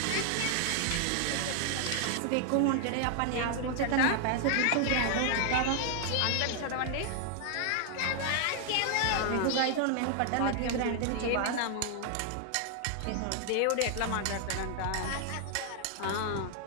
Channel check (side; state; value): both; different; correlation 0.00